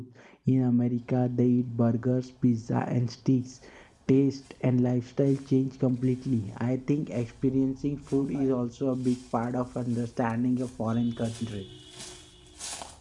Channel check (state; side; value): identical; both; correlation 1.00